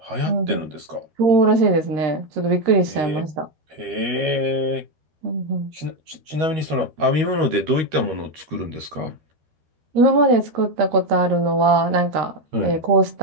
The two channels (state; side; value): late; left; 13 ms